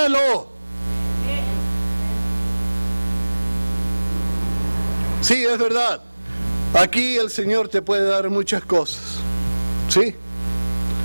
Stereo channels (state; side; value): inverted; both; correlation -1.00